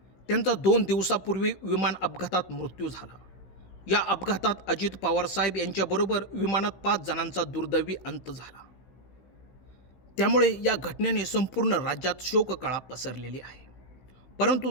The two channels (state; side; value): late; right; 16 ms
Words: त्यांचा 2 दिवसापूर्वी विमान अपघातात मृत्यू झाला. या अपघातात अजित पवार साहेब यांच्याबरोबर विमानात 5 जणांचा दुर्दैवी अंत झाला. त्यामुळे या घटनेने संपूर्ण राज्यात शोककळा पसरलेली आहे. परंतु